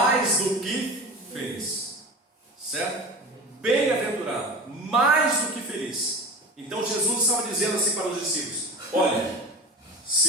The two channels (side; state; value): both; normal; correlation 0.32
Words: do que feliz, certo? Bem-aventurado, mais do que feliz. Então Jesus estava dizendo assim para os discípulos: olha,